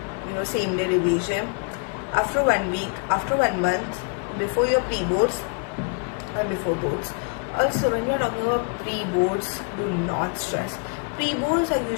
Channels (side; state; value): right; quieter; 39.4 dB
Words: same day revision. After 1 week, after 1 month, before your pre-boards and before boards. Also, when we are talking about pre-boards, do not stress. Pre-boards are